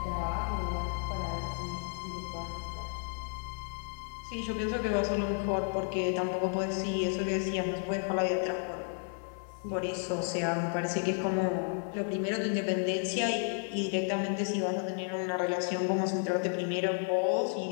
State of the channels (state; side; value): silent; right; 56 dB below the other